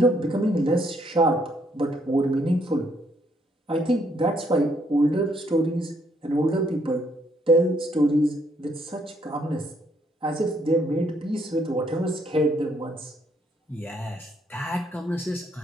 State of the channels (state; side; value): normal; both; correlation 0.70